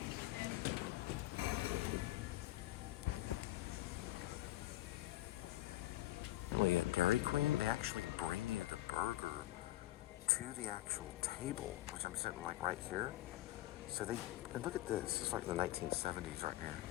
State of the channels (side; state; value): right; quieter; 16.2 dB